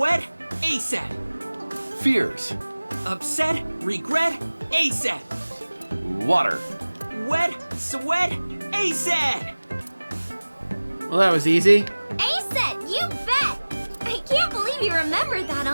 ASAP. Fears. Upset, regret, ASAP. Water. Wet, sweat, ASAP. Well, that was easy. Aset, you bet! I can't believe you remembered that,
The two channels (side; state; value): both; inverted; correlation -1.00